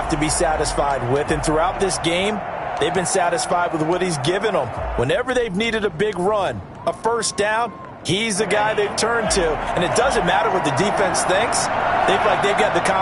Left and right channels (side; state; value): both; identical; correlation 1.00